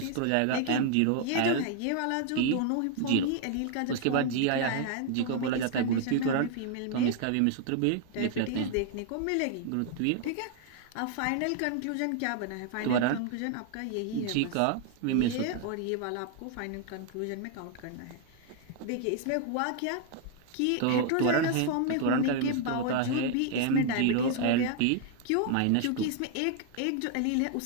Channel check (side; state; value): both; different; correlation 0.00